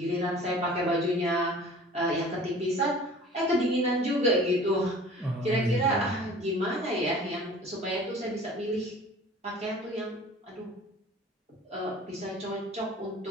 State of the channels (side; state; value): both; normal; correlation 0.45